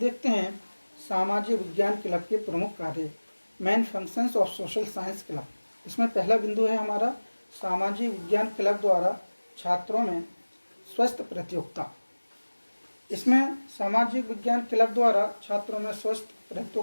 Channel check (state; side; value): inverted; both; correlation -1.00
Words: हैं सामाजिक विज्ञान क्लब के प्रमुख कार्य, main functions of social science club. इसमें पहला बिंदु है हमारा सामाजिक विज्ञान क्लब द्वारा छात्रों में स्वस्थ प्रतियोगिता। इसमें सामाजिक विज्ञान क्लब द्वारा छात्रों में स्वस्थ